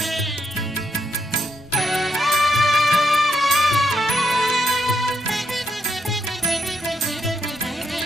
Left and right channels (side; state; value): both; normal; correlation 0.79